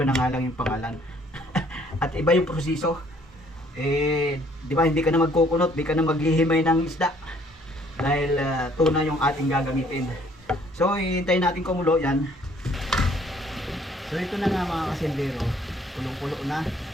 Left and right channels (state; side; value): normal; both; correlation 0.61